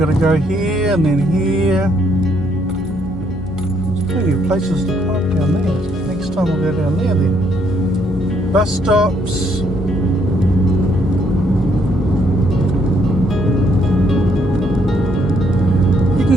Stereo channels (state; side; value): noise; left; hum, 13 dB below the sound